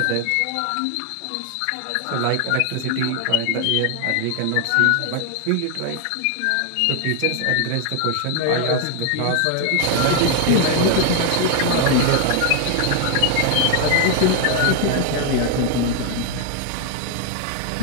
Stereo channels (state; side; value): different; both; correlation 0.00